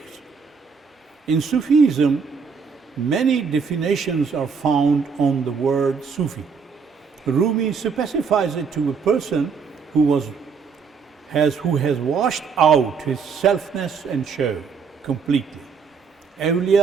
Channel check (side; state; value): left; quieter; 5.7 dB